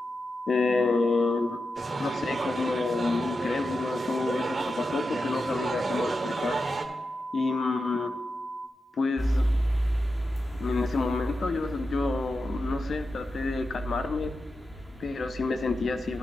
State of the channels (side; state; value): both; normal; correlation 0.89